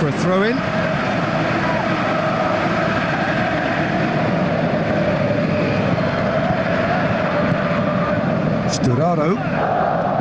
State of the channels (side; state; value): both; identical; correlation 1.00